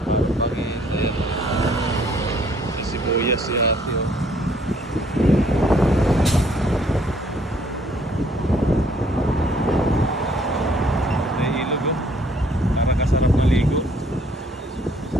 Pangin, ayan. Sa sibuyas si ate.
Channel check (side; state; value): both; normal; correlation 0.63